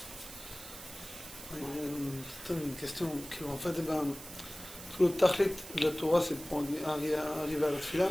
C'est une question qui, en fait, tout le tachlit de la Torah, c'est pour arriver à la tefila.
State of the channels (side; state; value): right; noise; hiss, 14 dB below the sound